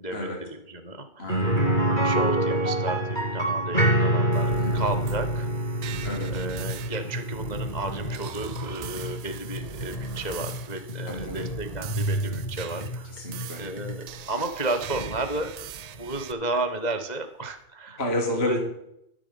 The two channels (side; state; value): right; late; 1.9 ms